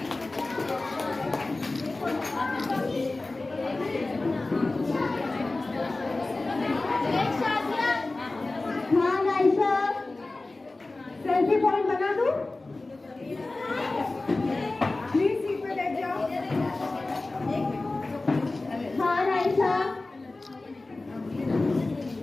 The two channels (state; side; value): quieter; right; 3.2 dB